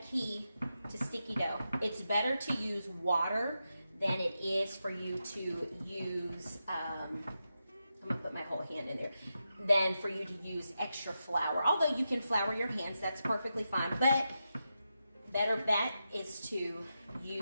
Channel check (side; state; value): both; inverted; correlation -0.88